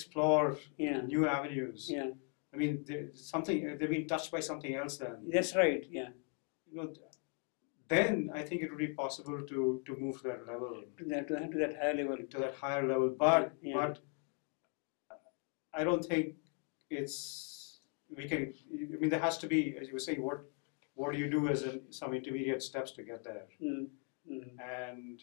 new avenues. I mean, they've been touched by something else then. That's right, You know, then I think it would be possible to move to that level. To that higher level. To that higher level. But I don't think we can, I mean, there has to be, as you were saying, what do you do as some intermediate steps to get there?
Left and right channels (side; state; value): right; quieter; 38.6 dB